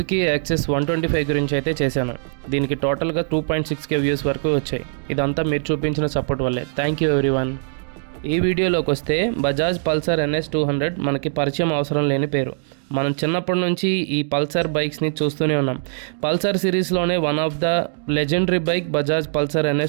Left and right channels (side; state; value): left; silent; digital silence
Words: యాక్సెస్ 125 గురించి అయితే చేశాను. దీనికి టోటల్గా 2.6K వ్యూస్ వరకు వచ్చాయి. ఇదంతా మీరు చూపించిన సపోర్ట్ వల్లే. Thank you everyone. ఈ వీడియోలోకి వస్తే బజాజ్ పల్సర్ NS 200 మనకి పరిచయం అవసరం లేని పేరు. మనం చిన్నప్పటి నుంచి ఈ పల్సర్ బైక్స్ని చూస్తూనే ఉన్నాం. పల్సర్ సిరీస్లోనే one of the legendary bike Bajaj Pulsar